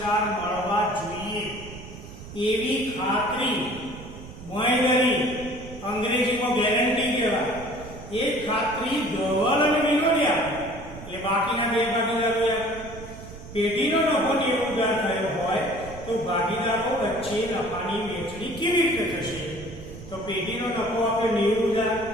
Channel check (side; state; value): right; noise; rumble, 14 dB below the sound